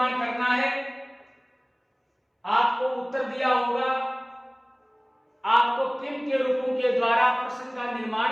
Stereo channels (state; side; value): identical; both; correlation 1.00